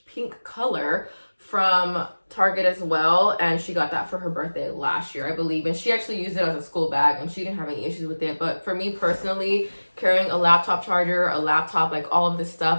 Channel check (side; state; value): both; inverted; correlation -1.00